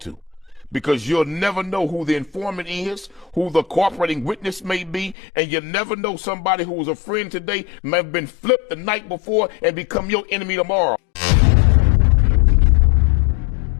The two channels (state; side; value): drops out; right; at 5.2 s